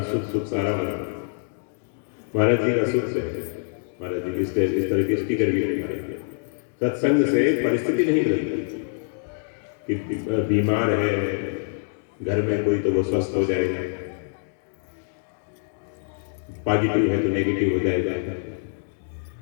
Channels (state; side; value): silent; right; digital silence